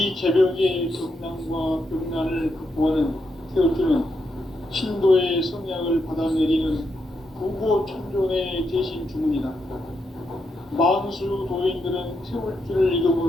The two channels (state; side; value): normal; both; correlation 0.82